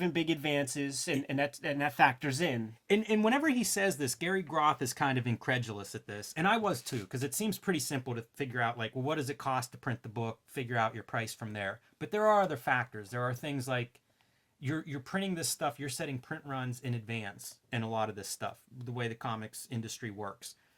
big advances, and that factors in. And whenever he says this, Gary Groth is kind of incredulous at this, and I was too, because it seems pretty simple to figure out, like, well, what does it cost to print the book? Figure out your price from there. But there are other factors. There are things like you're printing this stuff. You're setting print runs in advance in a lot of this stuff. The way the comics industry works.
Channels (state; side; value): identical; both; correlation 1.00